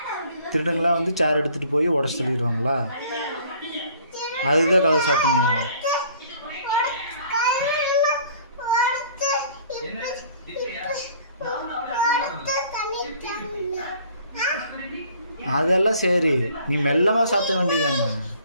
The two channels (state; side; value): inverted; both; correlation -0.55